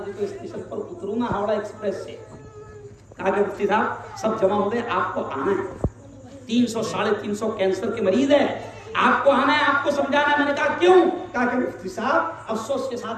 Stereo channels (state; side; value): identical; both; correlation 1.00